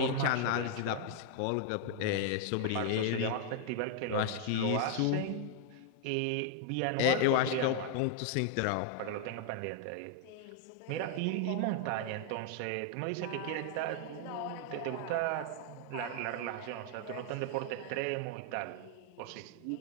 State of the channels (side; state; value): both; different; correlation 0.00